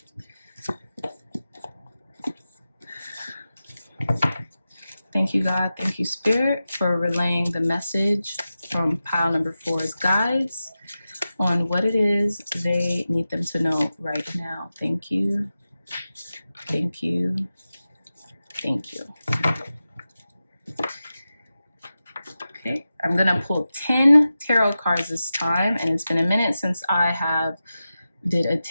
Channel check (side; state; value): both; inverted; correlation -0.93